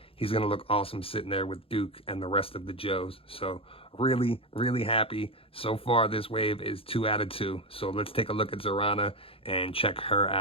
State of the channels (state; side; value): late; right; 0.27 ms